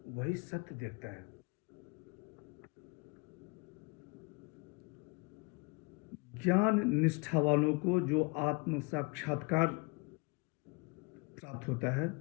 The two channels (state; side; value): quieter; right; 30.0 dB